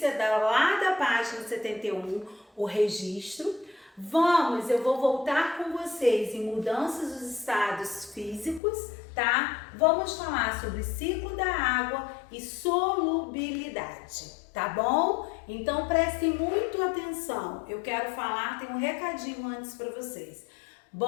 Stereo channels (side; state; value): right; drops out; at 8.6 s